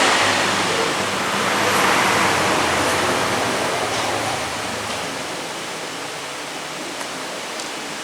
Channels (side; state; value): both; identical; correlation 1.00